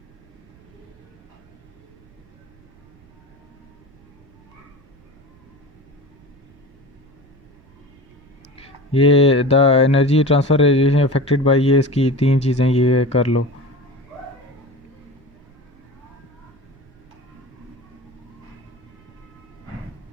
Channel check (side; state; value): right; noise; rumble, 28 dB below the sound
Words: ये the energy transfer radiation affected by, ये इसकी 3 चीज़ें, ये कर लो।